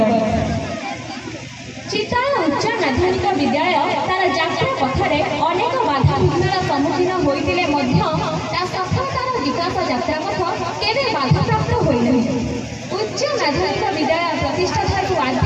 चित्ताला उच्च माध्यमिक विद्यालय तार जात्रा पथरे अनेक बाधा विघ्नर सम्मुखीन होते सफलतार विकास यात्रा पथ केवे बाधाप्राप्त होइनाही। उच्च माध्यमिक विद्यालय प्रतिष्ठा ठारू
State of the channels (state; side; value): identical; both; correlation 1.00